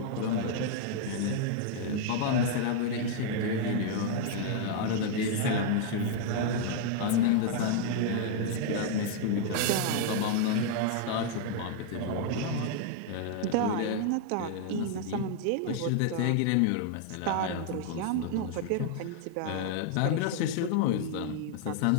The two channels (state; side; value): different; both; correlation 0.00